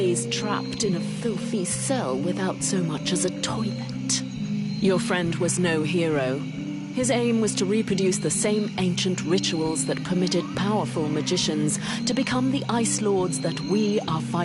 trapped in a filthy cell without so much as a toilet. Your friend was no hero. His aim was to reproduce the same ancient rituals that permitted powerful magicians to become the Ice Lords that we are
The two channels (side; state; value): both; identical; correlation 1.00